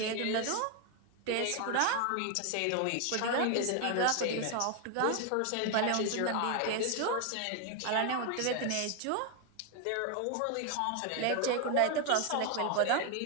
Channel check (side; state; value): both; different; correlation 0.01